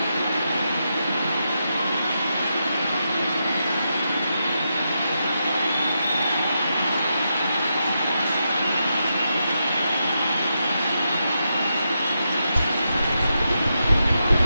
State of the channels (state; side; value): inverted; both; correlation -0.85